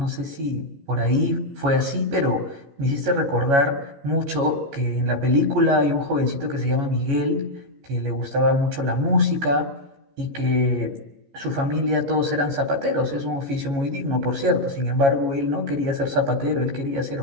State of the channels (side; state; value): left; late; 14 ms